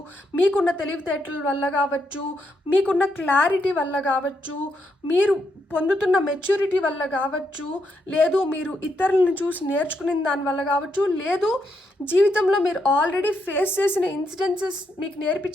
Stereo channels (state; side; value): normal; both; correlation 0.79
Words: మీకున్న తెలివితేటల వల్ల కావచ్చు, మీకున్న క్లారిటీ వల్ల కావచ్చు, మీరు పొందుతున్న మెచ్యూరిటీ వల్ల కావచ్చు, లేదు మీరు ఇతరులను చూసి నేర్చుకునే దాని వల్ల కావచ్చు, లేదు జీవితంలో మీరు ఆల్రెడీ ఫేస్ చేసిన ఇన్సిడెన్సెస్ మీకు